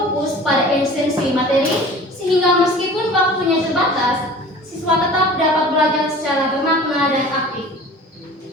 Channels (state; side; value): normal; both; correlation 0.43